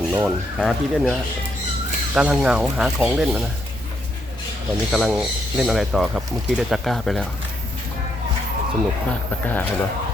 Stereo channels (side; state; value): both; normal; correlation 0.76